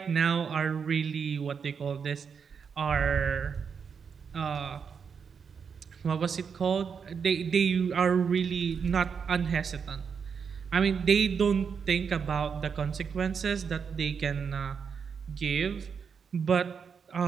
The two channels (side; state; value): left; quieter; 6.4 dB